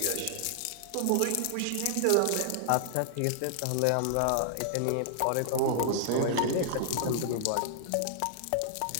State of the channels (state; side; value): different; both; correlation -0.01